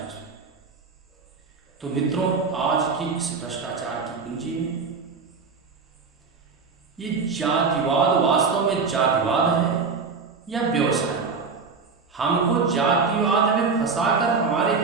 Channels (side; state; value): left; quieter; 4.9 dB